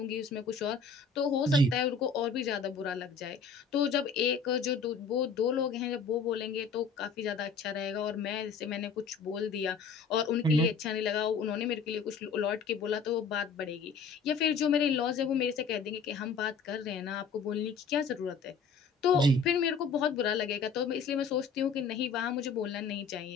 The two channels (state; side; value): quieter; right; 5.3 dB